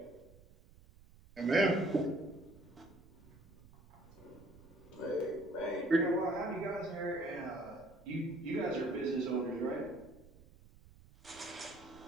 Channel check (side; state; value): right; noise; rumble, 23 dB below the sound